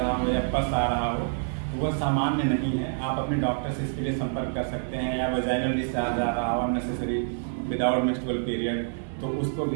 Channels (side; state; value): left; silent; digital silence